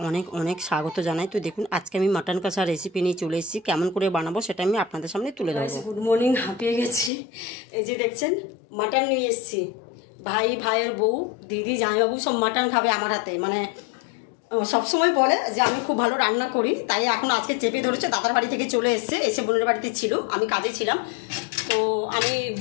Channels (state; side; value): drops out; right; at 7.1 s